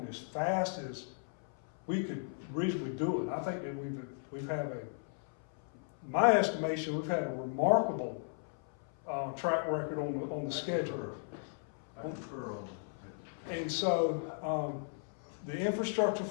as fast as we could reasonably do it. I think that we've had my estimation, we've had a remarkable track record on the schedule. I concur on that. And so, the infrastructure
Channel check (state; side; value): silent; right; 54 dB below the other